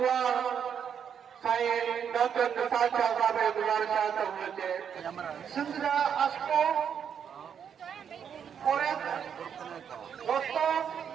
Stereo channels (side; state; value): left; quieter; 7.9 dB